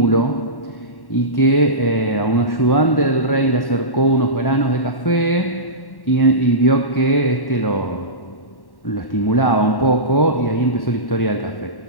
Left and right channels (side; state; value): right; late; 1.1 ms